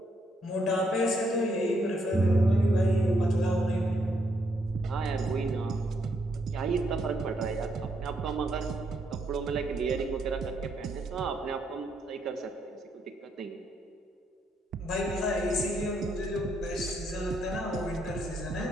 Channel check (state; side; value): normal; both; correlation 0.75